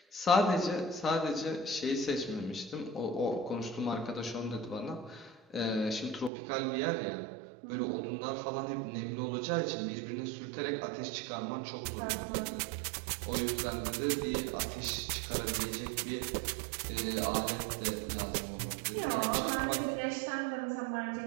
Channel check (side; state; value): left; drops out; at 6.3 s